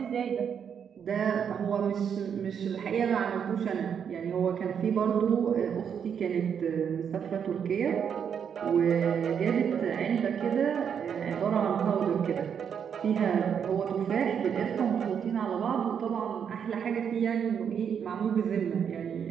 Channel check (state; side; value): quieter; left; 7.7 dB